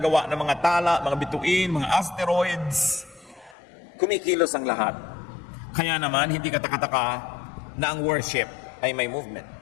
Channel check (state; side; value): drops out; right; at 3.6 s